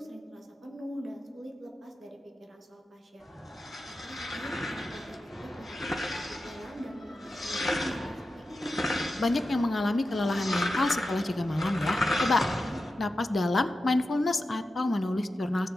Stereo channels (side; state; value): both; normal; correlation 0.91